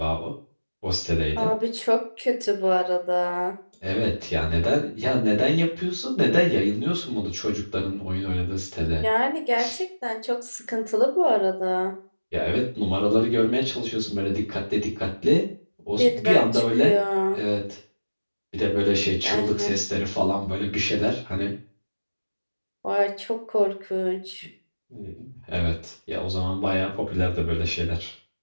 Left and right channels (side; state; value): both; inverted; correlation -1.00